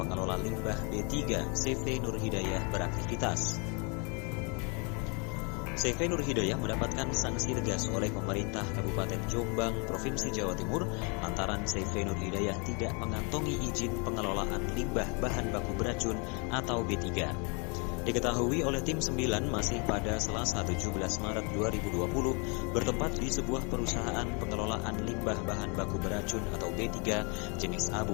limbah B3 CV Nur Hidayah beraktivitas. CV Nur Hidayah mendapatkan sanksi tegas oleh pemerintah Kabupaten Jombang, Provinsi Jawa Timur lantaran CV Nur Hidayah tidak mengantongi izin pengelolaan limbah bahan baku beracun atau B3. Diketahui oleh tim 9 masih pada Selasa 17 Maret 2020 bertempat di sebuah perusahaan pengelolaan limbah bahan baku beracun atau B3 jenis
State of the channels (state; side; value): quieter; right; 33.8 dB